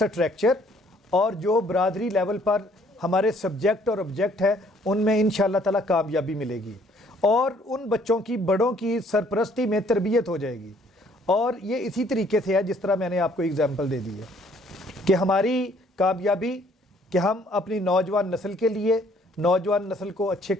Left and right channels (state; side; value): normal; both; correlation 0.62